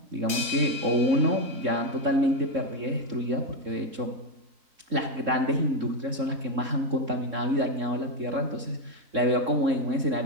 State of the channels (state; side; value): late; left; 3.7 ms